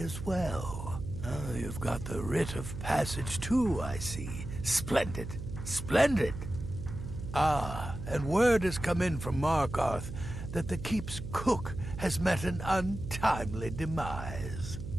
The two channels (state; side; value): noise; right; hum, 8 dB below the sound